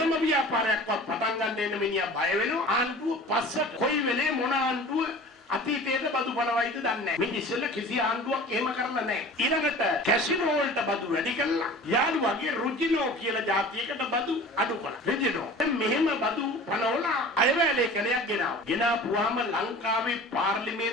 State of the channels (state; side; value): normal; both; correlation 0.41